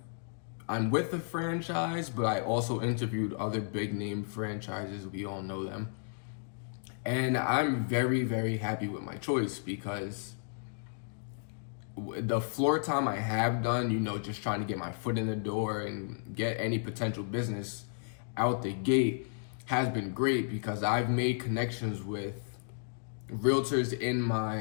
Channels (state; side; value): silent; right; digital silence